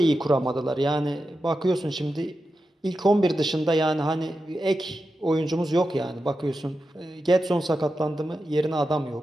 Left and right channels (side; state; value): both; normal; correlation 0.90